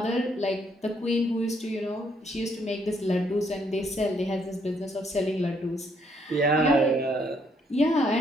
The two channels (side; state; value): both; normal; correlation 0.70